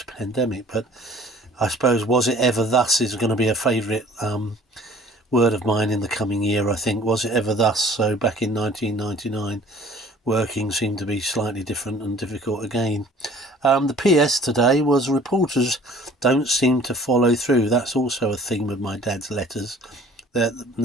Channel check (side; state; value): both; normal; correlation 0.51